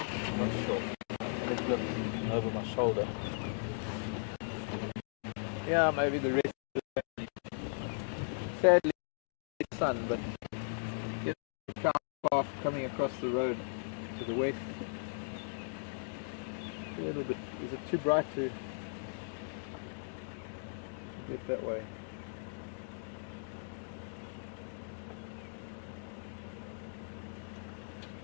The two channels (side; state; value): right; silent; digital silence